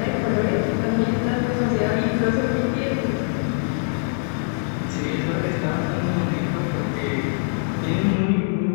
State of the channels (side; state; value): right; silent; digital silence